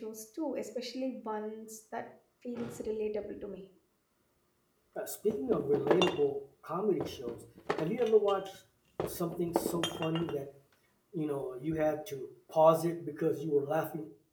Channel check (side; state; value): both; identical; correlation 1.00